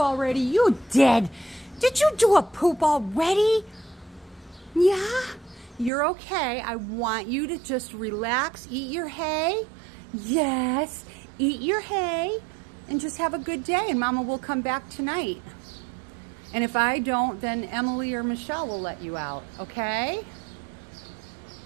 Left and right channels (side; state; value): left; drops out; at 5.9 s